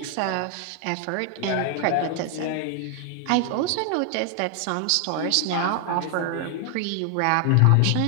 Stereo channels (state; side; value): different; both; correlation 0.00